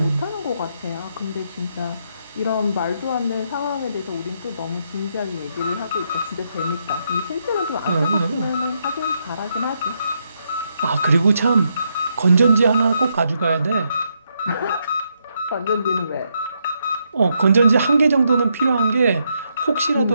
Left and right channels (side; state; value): both; inverted; correlation -0.79